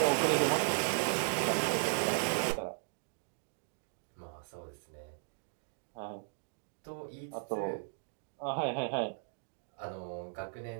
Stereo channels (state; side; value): silent; left; digital silence